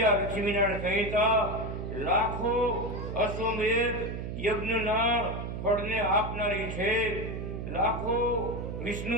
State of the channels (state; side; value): noise; right; hum, 5 dB below the sound